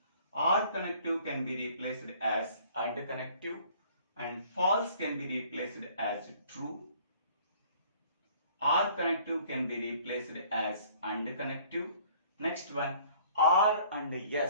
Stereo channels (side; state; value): both; inverted; correlation -0.55